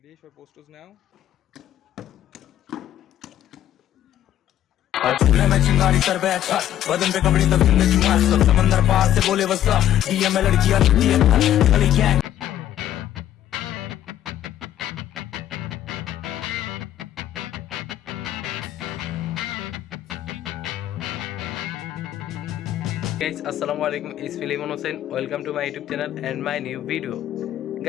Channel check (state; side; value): quieter; right; 11.7 dB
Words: for posters now? चूल्हे में चिंगारी कर बैठा बदन पे कपड़े तब में चुमार सब समंदर पार से बोले वसा डीएम में लड़कियां लगती है गली gang Guys, assalamu alaikum. It's Filimon Hussain. Welcome to my YouTube channel and my new video.